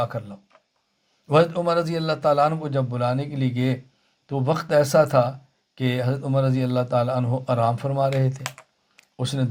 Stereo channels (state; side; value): identical; both; correlation 1.00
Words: کر لاؤ۔ حضرت عمر رضی اللہ تعالیٰ عنہ کو جب بلانے کے لیے گئے تو وقت ایسا تھا کہ حضرت عمر رضی اللہ تعالیٰ عنہ آرام فرما رہے تھے۔ اس نے